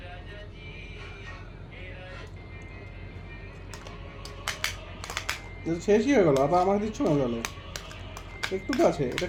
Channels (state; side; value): identical; both; correlation 1.00